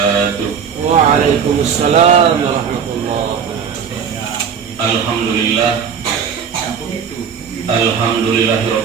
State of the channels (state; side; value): quieter; left; 7.0 dB